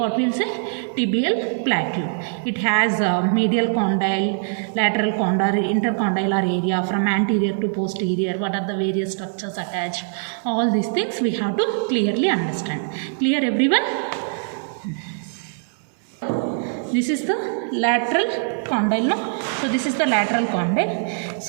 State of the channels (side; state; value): left; silent; 64 dB below the other